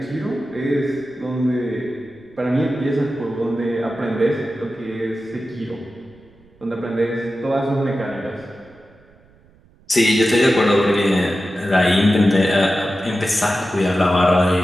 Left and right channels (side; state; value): right; noise; rumble, 29 dB below the sound